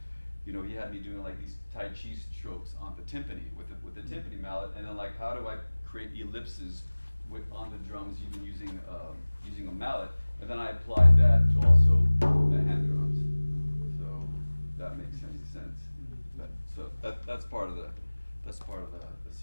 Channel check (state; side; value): inverted; both; correlation -1.00